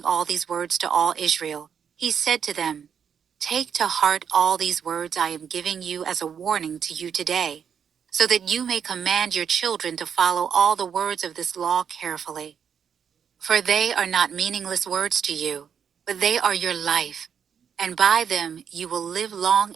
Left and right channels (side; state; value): left; quieter; 7.6 dB